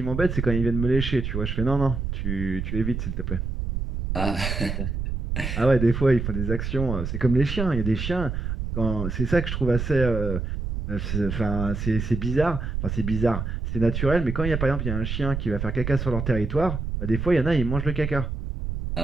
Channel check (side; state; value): right; noise; rumble, 3 dB below the sound